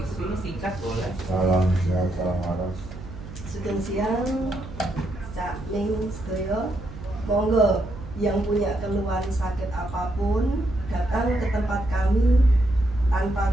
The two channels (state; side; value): noise; right; hum, 13 dB below the sound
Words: singkat boleh. Salam sehat, salam waras. Sugeng siang, Cak Ning sedaya. Monggo yang punya keluhan sakit apapun datang ke tempat kami